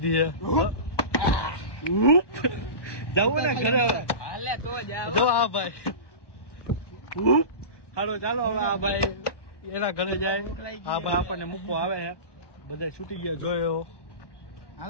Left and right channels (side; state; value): right; late; 1.2 ms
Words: છે. જવું ને ઘરે હવે જો આ ભાઈ. હાલો ચાલો હવે આ ભાઈ એના ઘરે જાય. આ ભાઈ આપણને મૂકવા આવે છે. બધા છૂટી ગયા જોયો.